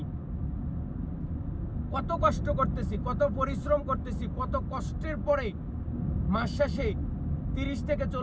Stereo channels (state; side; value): identical; both; correlation 1.00